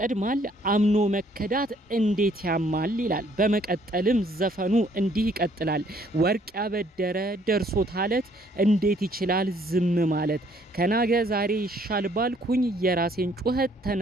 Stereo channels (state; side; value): normal; both; correlation 0.63